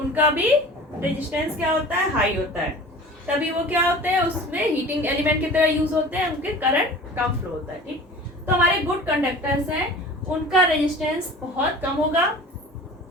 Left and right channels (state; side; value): normal; both; correlation 0.41